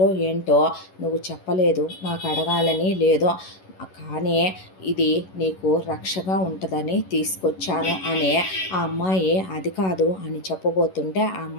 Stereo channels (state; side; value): late; right; 11 ms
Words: ఏంటో నువ్వు చెప్పలేదు, నాకు అడగాలని లేదు, కానీ ఇది నీకు రక్షగా ఉంటుందని తీసుకొచ్చాను అనే. ఆ అమ్మాయి అది కాదు అని చెప్పబోతుంటే ఆ